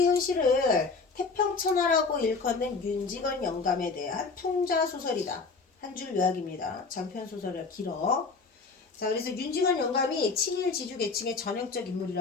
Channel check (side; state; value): right; quieter; 4.4 dB